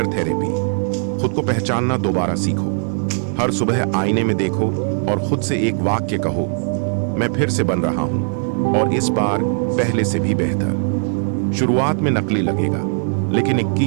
थेरेपी। खुद को पहचानना दोबारा सीखो। हर सुबह आईने में देखो और खुद से एक वाक्य कहो, मैं फिर से बन रहा हूं और इस बार पहले से भी बेहतर। शुरुआत में नकली लगेगा, लेकिन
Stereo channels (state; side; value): silent; left; 62 dB below the other